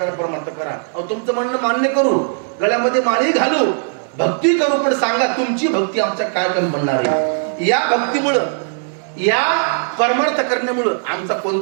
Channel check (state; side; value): silent; left; 62 dB below the other